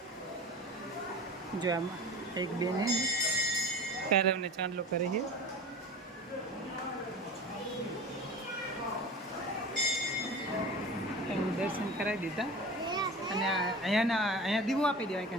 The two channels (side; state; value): both; normal; correlation 0.35